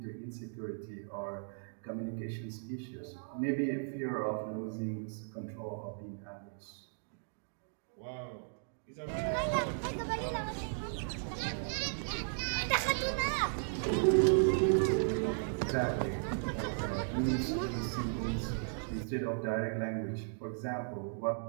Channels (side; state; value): left; silent; digital silence